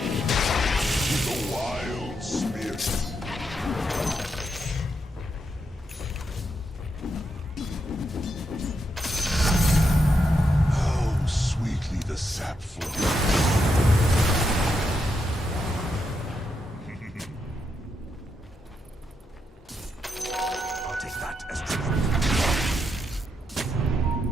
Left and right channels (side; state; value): both; normal; correlation 0.82